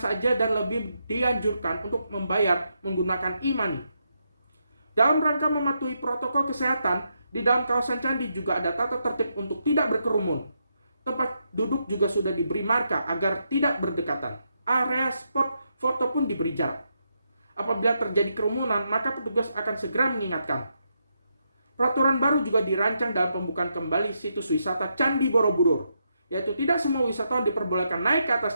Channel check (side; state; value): both; inverted; correlation -0.81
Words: dan lebih dianjurkan untuk membayar menggunakan e-money. Dalam rangka mematuhi protokol kesehatan, di dalam kawasan candi juga ada tata tertib untuk tidak berkerumun. Tempat duduk juga sudah diberi marka agar tidak berdekatan. Area spot foto pun diberi jarak. Apabila terjadi kerumunan, maka petugas akan segera mengingatkan. Peraturan baru juga dirancang dalam pembukaan kembali situs wisata Candi Borobudur, yaitu tidak semua wisatawan diperbolehkan naik ke